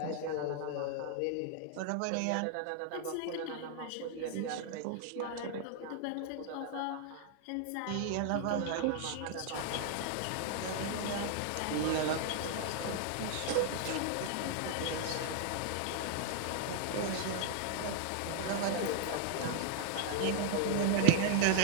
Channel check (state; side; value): different; both; correlation 0.00